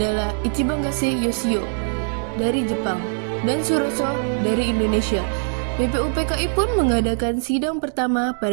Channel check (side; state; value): left; silent; digital silence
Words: Ichiban Gase Yoshio dari Jepang dan Suroso dari Indonesia. BPUPKI pun mengadakan sidang pertama